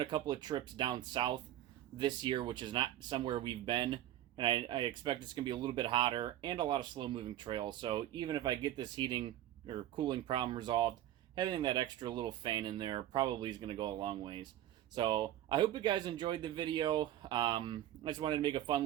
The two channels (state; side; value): quieter; left; 12.9 dB